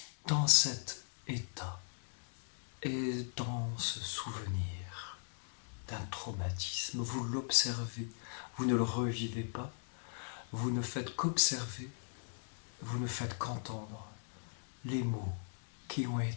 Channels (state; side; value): silent; right; digital silence